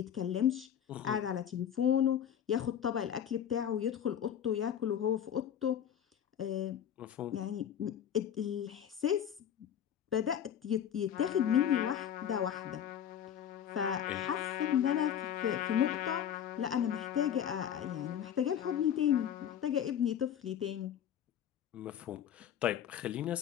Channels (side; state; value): right; quieter; 9.5 dB